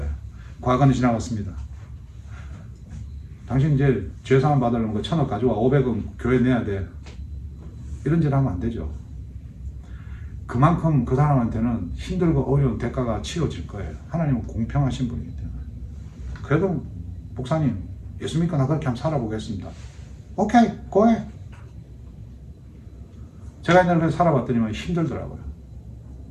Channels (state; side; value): identical; both; correlation 1.00